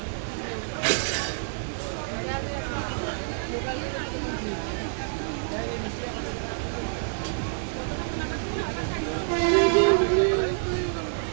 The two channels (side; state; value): left; silent; digital silence